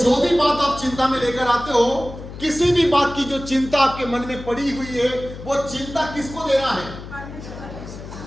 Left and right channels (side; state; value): left; noise; hum, 12 dB below the sound